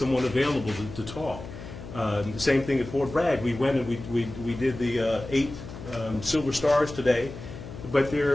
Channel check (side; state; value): left; noise; hum, 12 dB below the sound